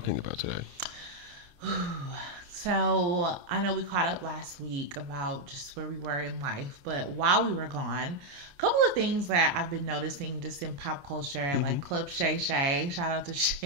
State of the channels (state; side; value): late; left; 28 ms